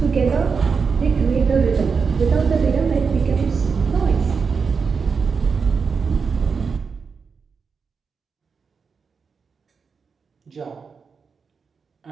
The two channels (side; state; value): left; quieter; 5.5 dB